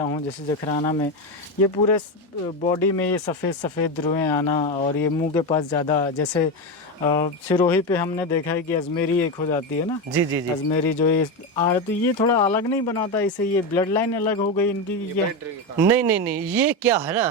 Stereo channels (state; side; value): normal; both; correlation 0.14